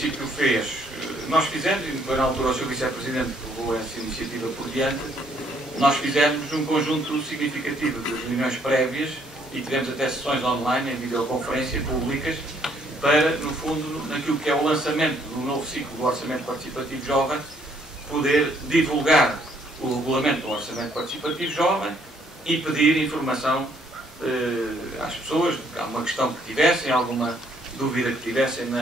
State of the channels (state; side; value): normal; both; correlation 0.67